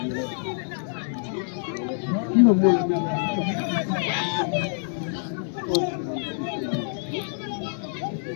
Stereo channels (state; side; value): silent; right; digital silence